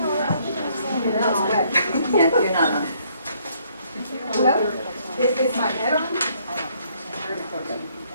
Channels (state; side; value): inverted; both; correlation -0.67